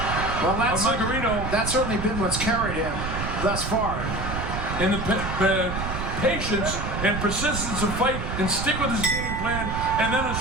Well, that's certainly been what's carried him thus far. And the patience and persistence of fight and stick with his game plan and then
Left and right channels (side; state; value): right; noise; rumble, 4 dB below the sound